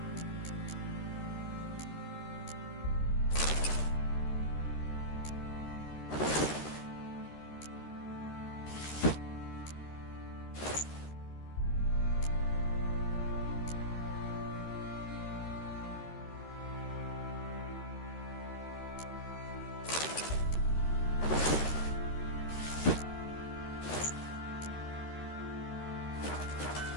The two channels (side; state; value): right; late; 13 ms